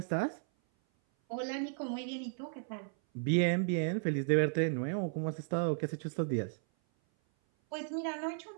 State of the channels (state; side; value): silent; left; 55 dB below the other